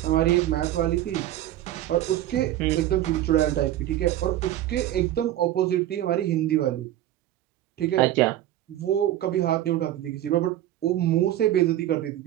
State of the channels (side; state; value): left; quieter; 13.2 dB